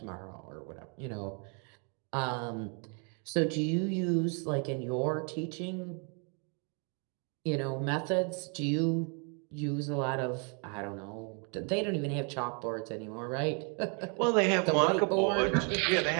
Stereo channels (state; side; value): quieter; left; 37.6 dB